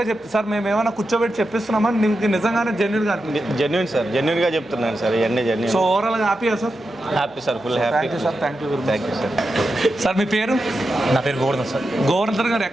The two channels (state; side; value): noise; left; hum, 30 dB below the sound